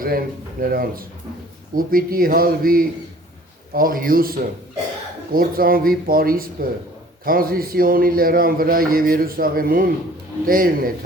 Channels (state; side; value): normal; both; correlation 0.51